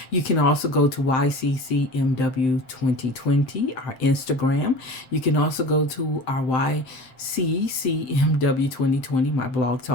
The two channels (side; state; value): right; late; 7.8 ms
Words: You can also go to YCCMW 2020, our Instagram. You can also go to our YCCMW 2020, my blog